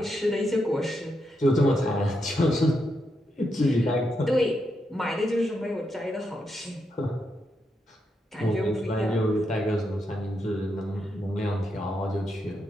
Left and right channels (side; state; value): both; normal; correlation 0.83